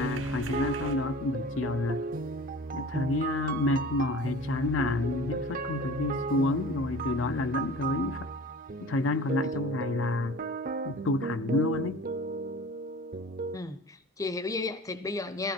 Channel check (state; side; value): normal; both; correlation 0.41